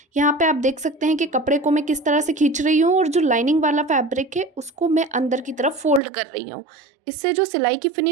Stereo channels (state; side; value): drops out; left; at 6.0 s